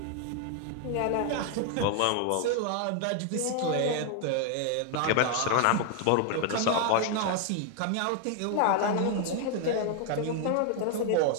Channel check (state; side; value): different; both; correlation 0.00